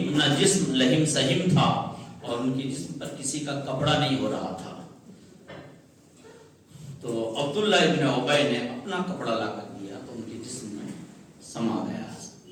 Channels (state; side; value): identical; both; correlation 1.00